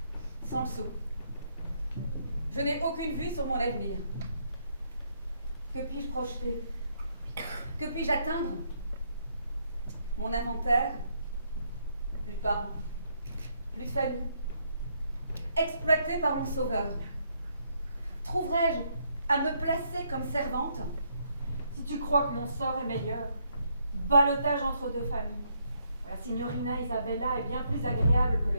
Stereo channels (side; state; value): both; inverted; correlation -0.73